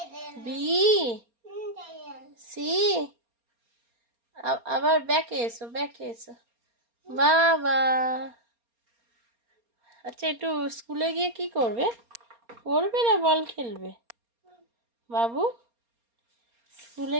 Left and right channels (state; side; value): late; left; 4.3 ms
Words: B C. আবার ব্যাকে এসো ব্যাকে এসো। বাবা আচ্ছা একটু স্কুলে গিয়ে কি করবে? পড়বে না বল খেলবে? বাবু স্কুলে